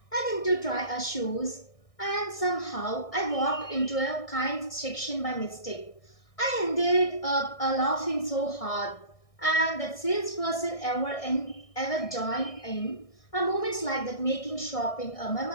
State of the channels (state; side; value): late; right; 1.6 ms